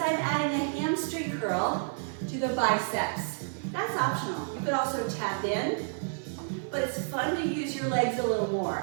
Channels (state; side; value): silent; left; 58 dB below the other